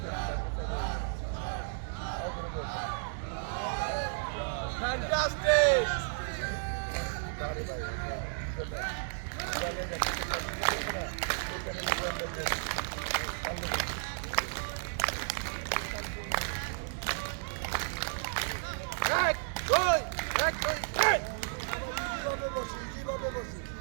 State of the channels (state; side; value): silent; left; 56 dB below the other